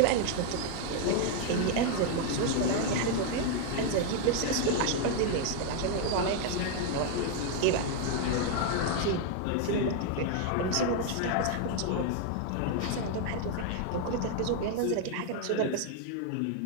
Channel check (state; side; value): different; both; correlation 0.00